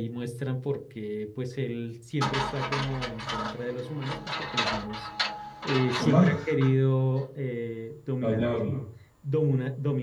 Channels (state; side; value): identical; both; correlation 1.00